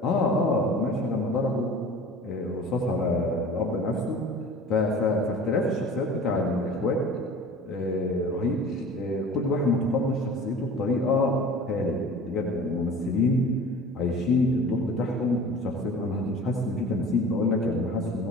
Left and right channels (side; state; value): both; normal; correlation 0.41